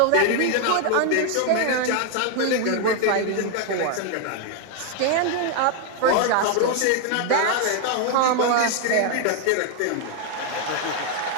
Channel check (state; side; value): different; both; correlation 0.01